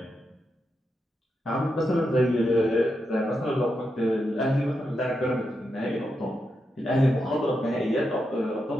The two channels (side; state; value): both; normal; correlation 0.85